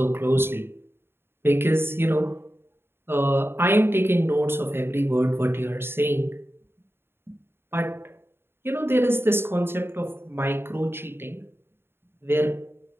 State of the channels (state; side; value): late; left; 0.11 ms